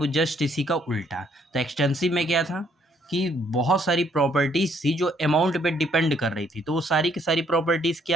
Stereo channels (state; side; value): normal; both; correlation 0.67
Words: जस्ट इसी का उल्टा। तो एक्सटेंसिव में क्या था कि बहुत सारी प्रॉपर्टीज थी जो अमाउंट पे डिपेंड कर रही थी, तो वो सारी की सारी प्रॉपर्टीज